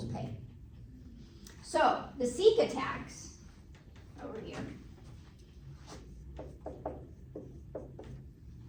pay. So, the SECA tax, over here,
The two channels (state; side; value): identical; both; correlation 1.00